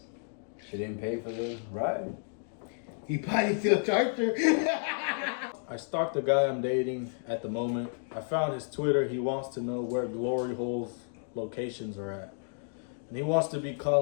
she didn't pay for the ride. He probably still charged her. I stalked the guy I'm dating at the moment. I found his Twitter. He wants to know where glory holes locations are at. And he wants to be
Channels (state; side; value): silent; right; digital silence